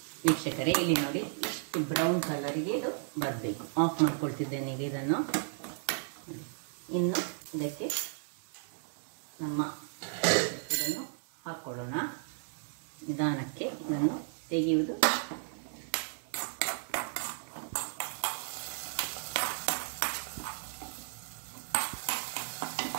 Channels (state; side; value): silent; left; 55 dB below the other